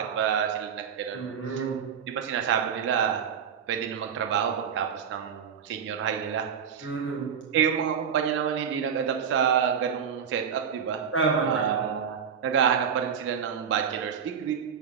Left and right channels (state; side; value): quieter; left; 7.4 dB